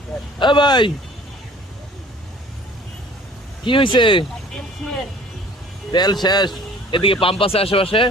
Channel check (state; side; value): normal; both; correlation 0.50